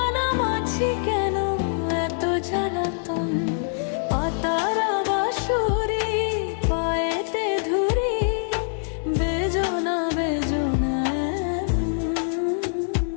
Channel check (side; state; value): right; silent; digital silence